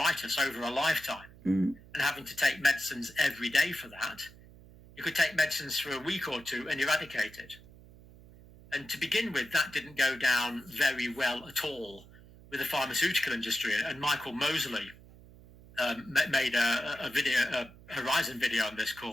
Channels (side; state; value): right; noise; hum, 21 dB below the sound